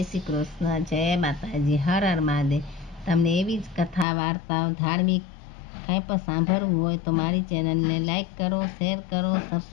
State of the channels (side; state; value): right; drops out; at 4.0 s